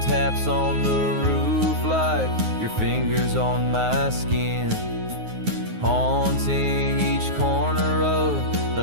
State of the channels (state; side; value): late; left; 9.5 ms